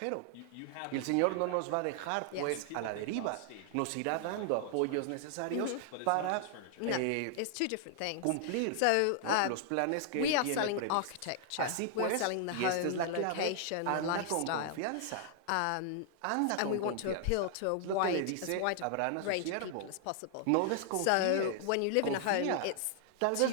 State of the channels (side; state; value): both; different; correlation 0.00